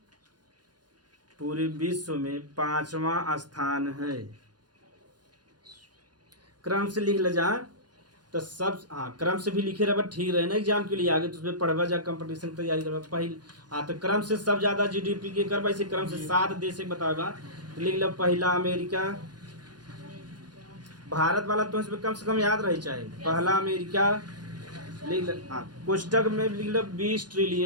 पूरे विश्व में 5वां स्थान है। क्रम से लिख ले जा तो सब, हाँ क्रम से भी लिखे रहे ठीक रहे ना एग्जाम के लिए आगे, तो उसमें पढ़वा जा कंपटीशन की तैयारी करवा पहले। हाँ तो क्रम से सब ज़्यादा जीडीपी के करवा, इसे क्रम से 7 देश से बताएगा। तो लिख लो पहला अमेरिका, भारत वाला तो इसमें कम से कम याद रही चाहे। पहला अमेरिका लिख लो, हाँ पुस्तक में लिख लो 20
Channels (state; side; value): late; left; 0.70 ms